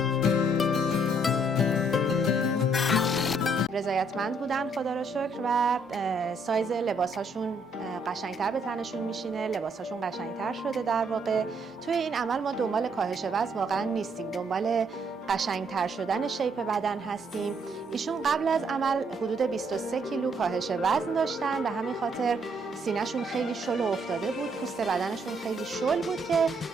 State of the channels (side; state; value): both; normal; correlation 0.70